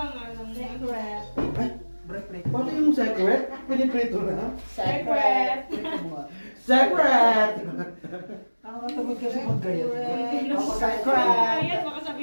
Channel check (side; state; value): both; inverted; correlation -1.00